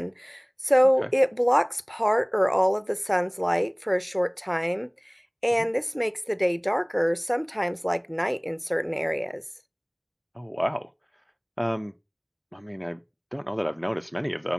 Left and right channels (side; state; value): both; identical; correlation 1.00